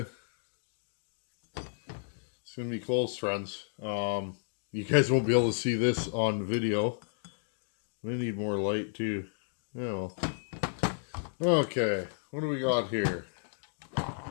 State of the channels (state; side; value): silent; right; digital silence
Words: gonna be close, friends. You guys won't be able to see this on video. I need more light too. Yeah, well. Okay, what do we got here?